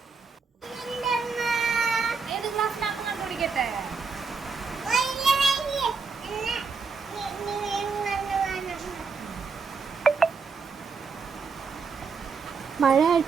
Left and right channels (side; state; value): left; quieter; 5.0 dB